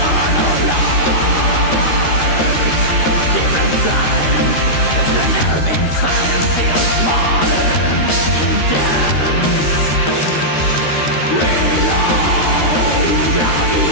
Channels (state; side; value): late; right; 13 ms